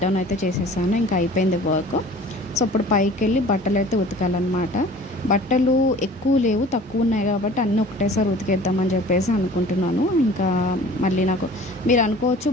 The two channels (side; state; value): both; normal; correlation 0.46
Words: డౌన్ అయితే చేసేసాను. ఇంకా అయిపోయింది వర్క్. సో ఇప్పుడు పైకి వెళ్ళి బట్టలు అయితే ఉతకాలన్నమాట. బట్టలు ఎక్కువ లేవు, తక్కువ ఉన్నాయి కాబట్టి అన్నీ ఒకటేసారి ఉతికేద్దామని చెప్పేసి అనుకుంటున్నాను. ఇంకా మళ్ళీ నాకు మీరు అనుకోవచ్చు